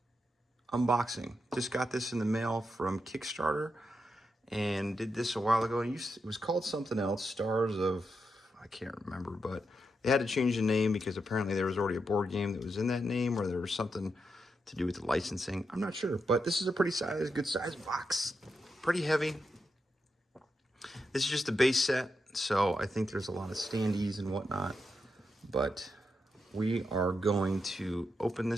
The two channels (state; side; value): normal; both; correlation 0.85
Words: unboxing. Just got this in the mail from Kickstarter and did this a while ago. And it was called something else, Stars of, I can't remember, but they had to change the name because apparently there was already a board game that was in that name, or there was something to do with the licensing. I'm not sure, but this is a pretty good size box. Pretty heavy. This is just a base set, so I think there's a lot of standees and whatnot. But we are going to open